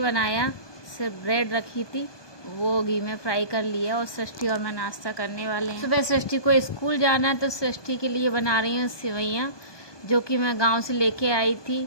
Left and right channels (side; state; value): right; late; 1.2 ms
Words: बनाया, सिर्फ ब्रेड रखी थी, वो घी में फ्राई कर लिया और सृष्टि और मैं नाश्ता करने वाले हैं। सुबह सृष्टि को स्कूल जाना है तो सृष्टि के लिए बना रही हूँ सेवइयाँ, जो कि मैं गांव से लेके आई थी